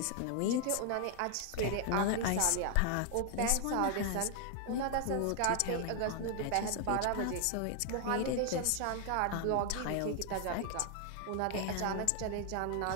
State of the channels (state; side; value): different; both; correlation 0.00